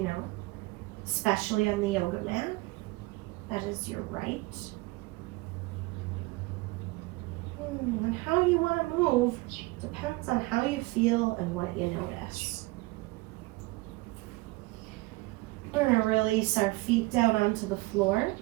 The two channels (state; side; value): quieter; left; 22.1 dB